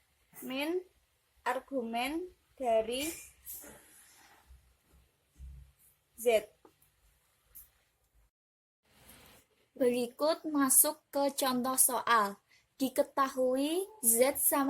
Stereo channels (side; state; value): both; identical; correlation 1.00